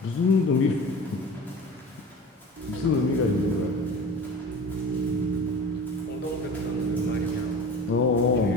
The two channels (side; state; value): both; normal; correlation 0.37